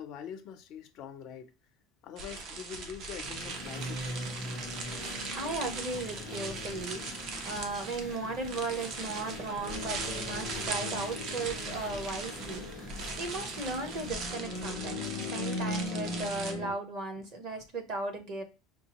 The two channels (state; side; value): normal; both; correlation 0.31